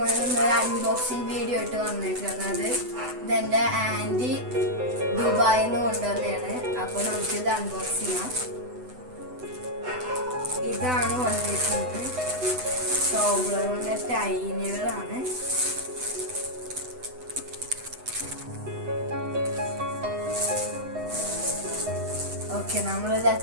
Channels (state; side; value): late; left; 8.0 ms